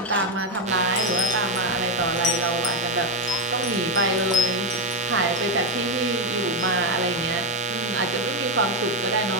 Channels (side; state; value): both; normal; correlation 0.07